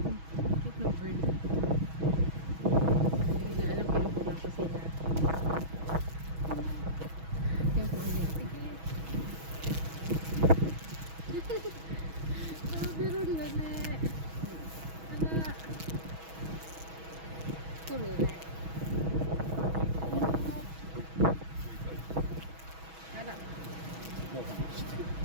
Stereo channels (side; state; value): left; late; 6.2 ms